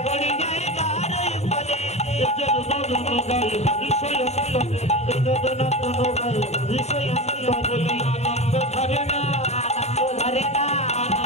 গড়ি যাই তাহার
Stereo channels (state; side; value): late; right; 0.32 ms